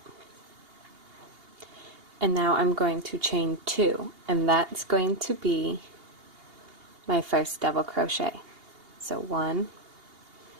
And now I'm going to chain two, and that's going to be my first double crochet. So 1,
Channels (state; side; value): late; left; 2.8 ms